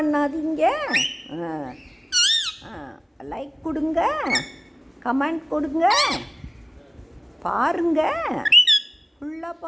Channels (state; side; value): identical; both; correlation 1.00